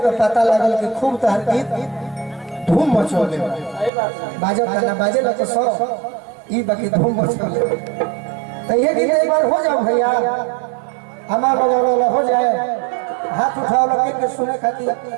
पता लगल कि खूब तहर गीत धूम मचौले बाजो गाना बाजे लगे सौ ई बाकी धूम मचौले। तो ये गीत एक बार हो जाओ भैया, हमारा बजावला हो जाए, हाथ उठाओ लगे के सुने खातिर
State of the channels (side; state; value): left; drops out; at 3.9 s